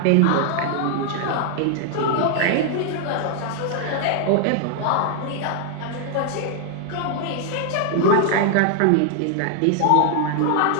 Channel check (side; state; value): both; different; correlation 0.00